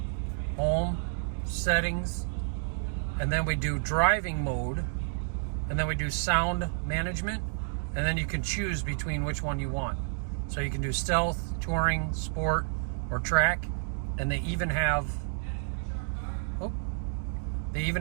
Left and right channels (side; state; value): left; silent; digital silence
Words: home, settings, and then we do driving mode, and then we do sound management, and then you can choose between which one you want. So you can do stealth, touring, sport, or track, and they even have,